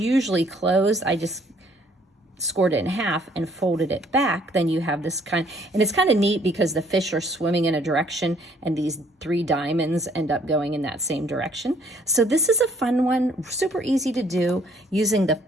closed, I just scored it in half and folded it back. Then you have this kind, and it's kind of neat because the fish are swimming in a direction and these 3 diamonds end up going in that same direction. So this is a fun one, super easy to do using the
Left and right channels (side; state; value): both; normal; correlation 0.62